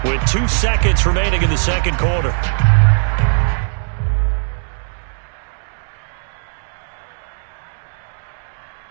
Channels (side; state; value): left; silent; digital silence